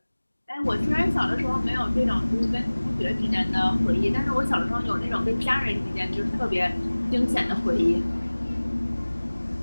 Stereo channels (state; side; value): inverted; both; correlation -1.00